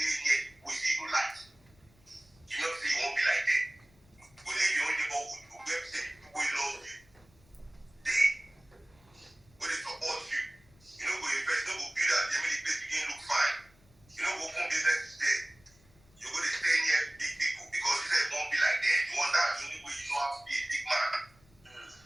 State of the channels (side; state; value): left; noise; rumble, 29 dB below the sound